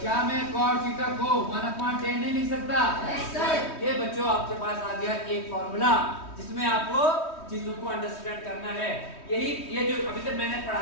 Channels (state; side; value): late; right; 3.2 ms